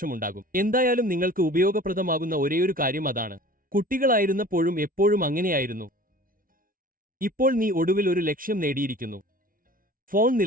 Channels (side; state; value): left; late; 0.41 ms